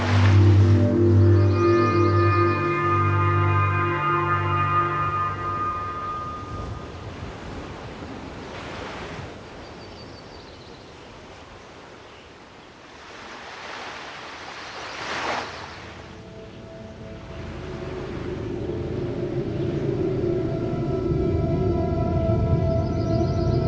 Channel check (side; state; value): both; identical; correlation 1.00